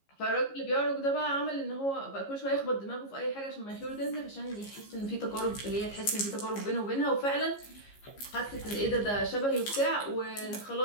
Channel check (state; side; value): late; right; 15 ms